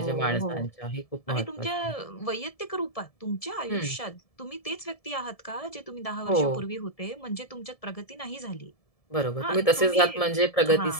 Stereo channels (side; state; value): right; late; 1.7 ms